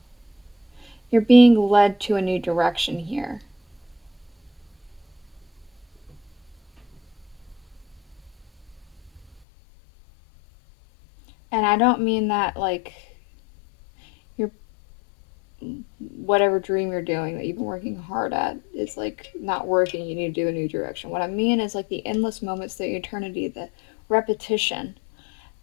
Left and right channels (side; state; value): right; drops out; at 9.4 s